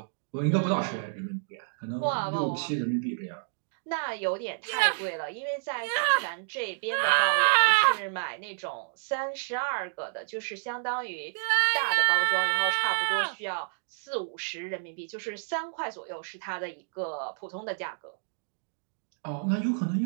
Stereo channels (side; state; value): left; silent; digital silence